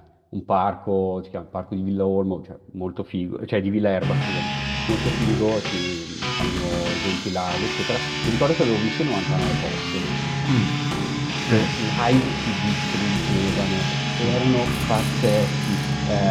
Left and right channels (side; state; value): both; identical; correlation 1.00